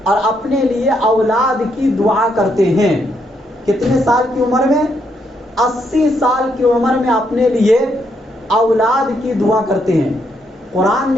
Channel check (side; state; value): both; normal; correlation 0.76